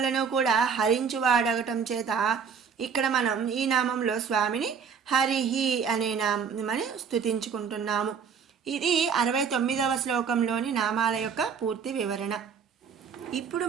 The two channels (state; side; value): quieter; left; 6.5 dB